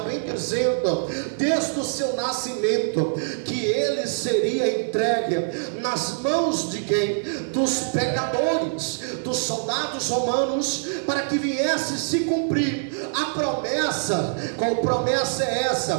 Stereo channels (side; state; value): left; silent; digital silence